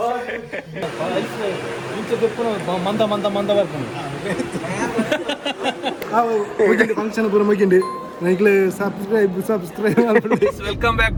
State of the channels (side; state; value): both; identical; correlation 1.00